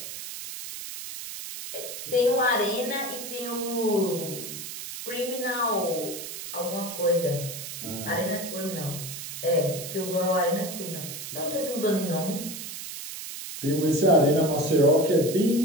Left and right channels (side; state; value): right; noise; hiss, 9 dB below the sound